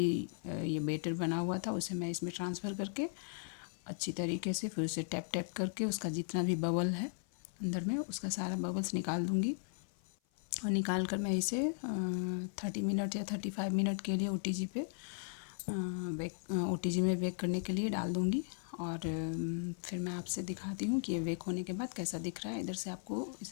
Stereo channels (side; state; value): right; silent; 53 dB below the other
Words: ये बेटर बना हुआ था उसे मैं इसमें ट्रांसफ़र करके अच्छी तरीके से फिर उसे टैप टैप करके उसका जितना भी बबल है अंदर में उसका सारा बबल्स निकाल दूँगी। और निकाल कर मैं इसे 30 मिनट या 35 मिनट के लिए OTG पे OTG में बेक करने के लिए डाल दूँगी। और फिर मैं आपसे दिखाती हूँ कि ये बेक होने के बाद कैसा दिख रहा है। इधर से आपको